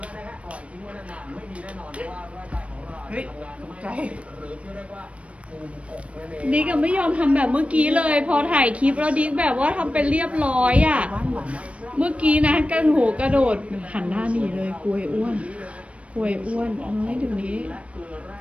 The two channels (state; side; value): late; left; 0.063 ms